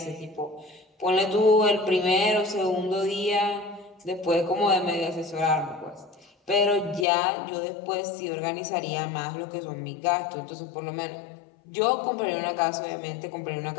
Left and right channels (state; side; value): drops out; right; at 7.1 s